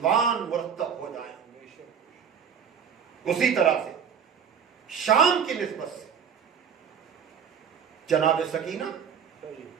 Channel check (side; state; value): left; quieter; 7.4 dB